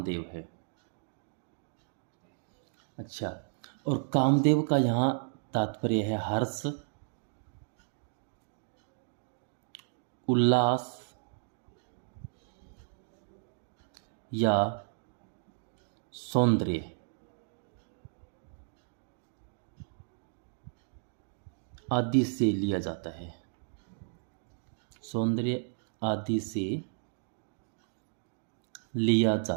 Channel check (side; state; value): left; silent; digital silence